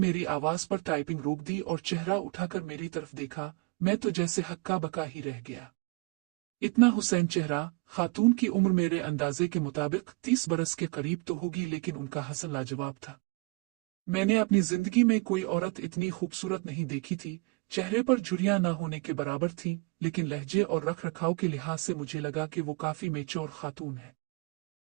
आवाज पर टाइपिंग रोक दी और चेहरा उठाकर मेरी तरफ देखा। मैं तो जैसे हक्का बका ही रह गया। इतना हुसैन चेहरा। खातून की उम्र मेरे अंदाजे के मुताबिक 30 बरस के करीब तो होगी, लेकिन उनका हसन लाजवाब था। मैंने अपनी जिंदगी में कोई औरत इतनी खूबसूरत नहीं देखी थी। चेहरे पर झुर्रियां ना होने के बराबर थी, लेकिन लहजे और रख रखाव के लिहाज से मुझे लगा कि वो काफी मेच्योर खातून है।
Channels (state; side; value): quieter; left; 29.8 dB